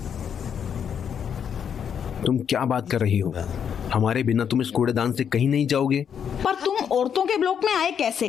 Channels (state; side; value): quieter; right; 7.9 dB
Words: तुम क्या बात कर रही हो? हमारे बिना तुम इस कूड़ेदान से कहीं नहीं जाओगे। पर तुम औरतों के ब्लॉक में आए